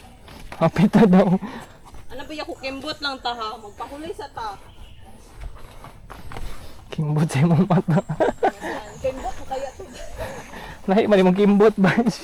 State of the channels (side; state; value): both; identical; correlation 1.00